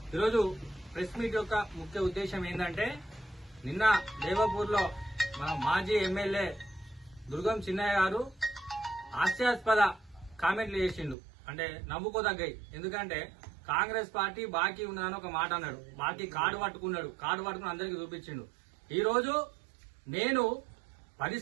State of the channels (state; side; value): drops out; left; at 11.2 s